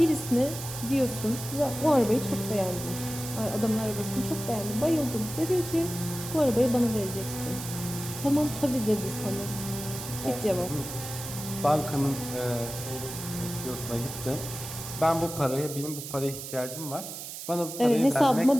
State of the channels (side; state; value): right; noise; hiss, 9 dB below the sound